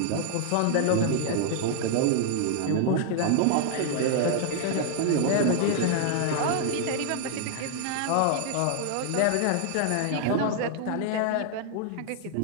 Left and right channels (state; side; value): different; both; correlation 0.00